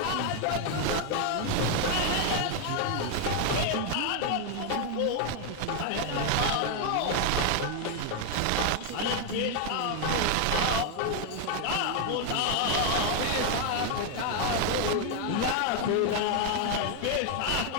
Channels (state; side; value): different; both; correlation 0.00